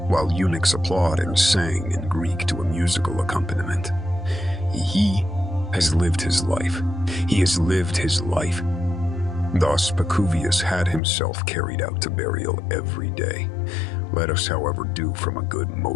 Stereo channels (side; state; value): right; drops out; at 11.0 s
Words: while eunuchs applaud and sang in Greek to a musical accompaniment. He has lived his life. He has lived his life. Thus, Pacuvius had himself carried out to burial every day. Let us, however, do from a good